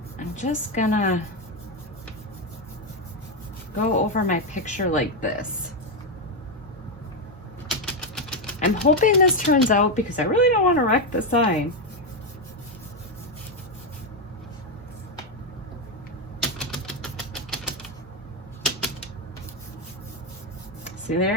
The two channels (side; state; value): both; normal; correlation 0.06